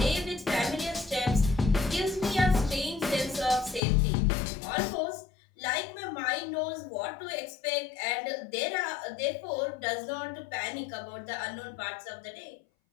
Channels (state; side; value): drops out; right; at 3.8 s